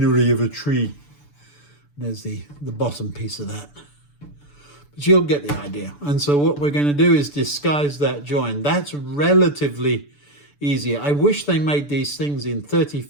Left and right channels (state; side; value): late; right; 6.9 ms